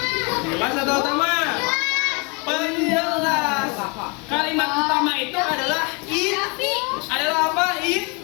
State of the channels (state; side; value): quieter; right; 31.8 dB